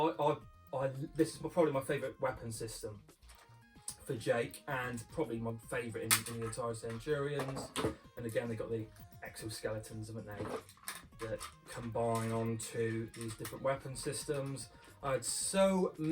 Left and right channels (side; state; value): both; identical; correlation 1.00